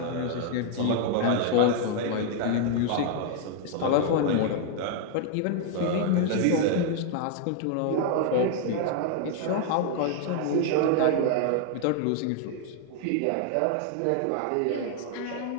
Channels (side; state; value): both; different; correlation 0.00